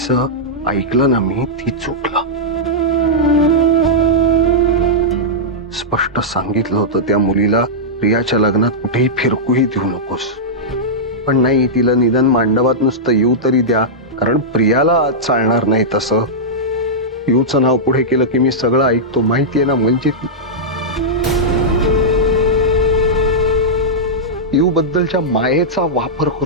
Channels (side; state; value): both; normal; correlation -0.10